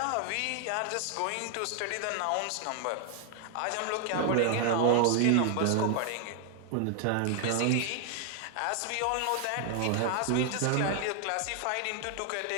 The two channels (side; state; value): both; different; correlation 0.00